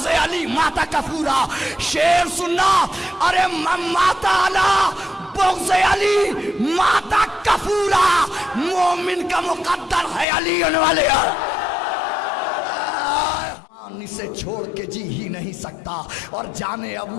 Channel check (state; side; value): drops out; right; at 10.2 s